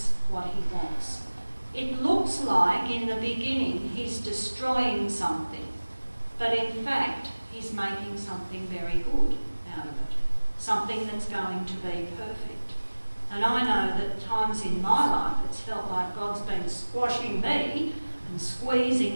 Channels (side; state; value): both; inverted; correlation -1.00